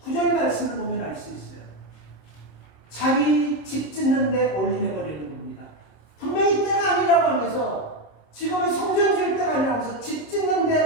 9절 말씀을 보면 알 수 있어요. 자기 집 짓는데 올인해버리는 겁니다. 분명히 때가 아니라고 하면서 지금은 성전 지을 때가 아니라고 하면서 집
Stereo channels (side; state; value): right; late; 26 ms